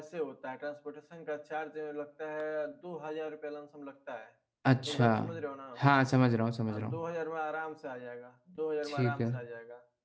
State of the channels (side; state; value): both; identical; correlation 1.00